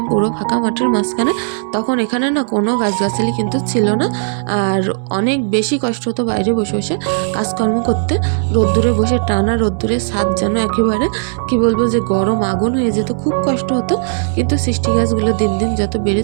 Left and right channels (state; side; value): silent; left; 69 dB below the other